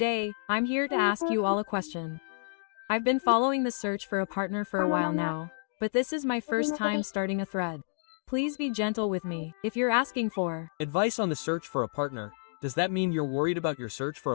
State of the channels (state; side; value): silent; right; digital silence